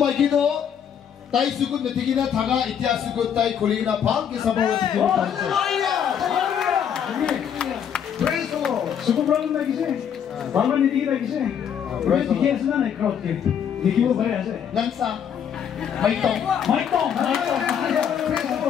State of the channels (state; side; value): quieter; right; 8.4 dB